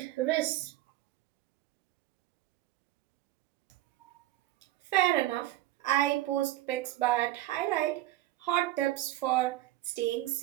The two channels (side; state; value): left; quieter; 15.6 dB